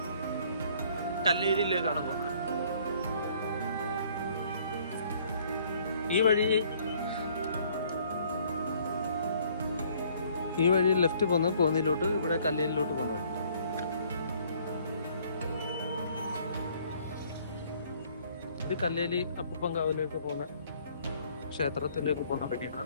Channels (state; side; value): inverted; both; correlation -0.60